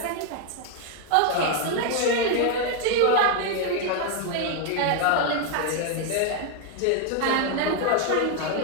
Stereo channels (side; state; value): both; different; correlation 0.01